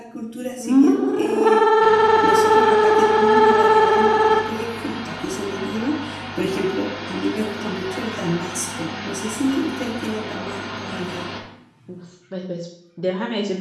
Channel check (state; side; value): identical; both; correlation 1.00